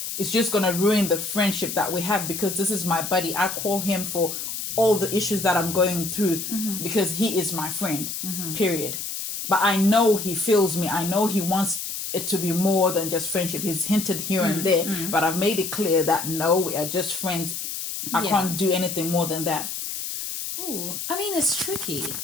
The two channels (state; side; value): noise; left; hiss, 5 dB below the sound